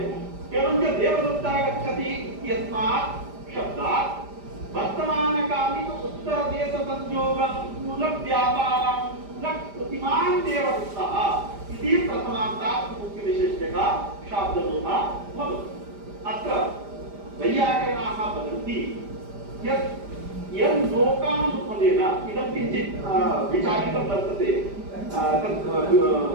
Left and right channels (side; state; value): left; late; 5.0 ms